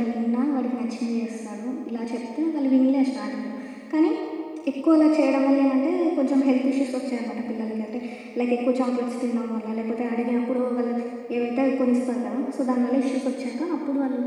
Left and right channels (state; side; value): identical; both; correlation 1.00